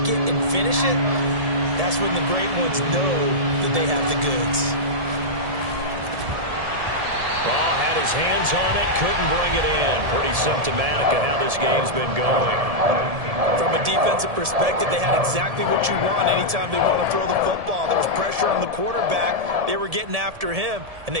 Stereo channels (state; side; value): late; left; 1.7 ms